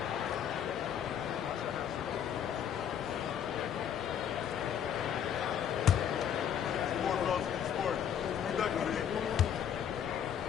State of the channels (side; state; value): right; quieter; 8.9 dB